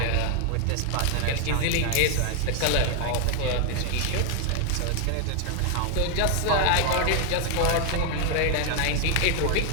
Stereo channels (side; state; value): both; different; correlation 0.00